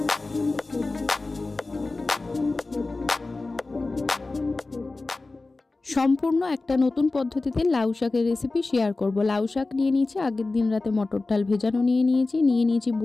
সম্পূর্ণ একটা নতুন পদ্ধতিতে লাউ শাকের রেসিপি শেয়ার করব। লাউ শাক নিয়ে নিয়েছি, আগের দিন রাতে মটর ডাল ভেজানো নিয়ে নিয়েছি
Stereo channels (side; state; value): right; quieter; 3.4 dB